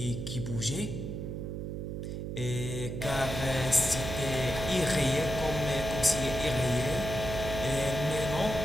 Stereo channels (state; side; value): noise; right; hum, 5 dB below the sound